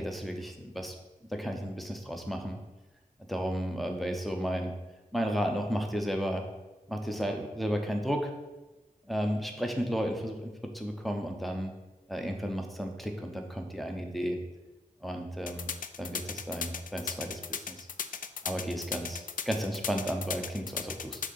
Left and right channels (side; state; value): both; normal; correlation 0.82